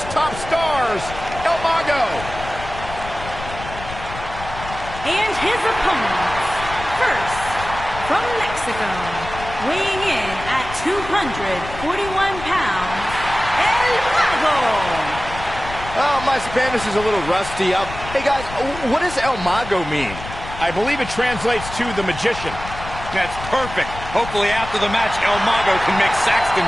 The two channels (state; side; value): noise; left; rumble, 11 dB below the sound